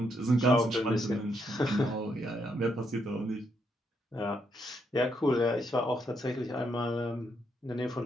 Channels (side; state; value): both; normal; correlation 0.77